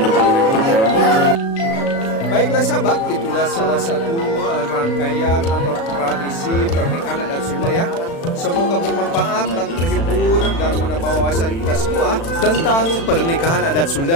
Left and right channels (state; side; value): late; right; 36 ms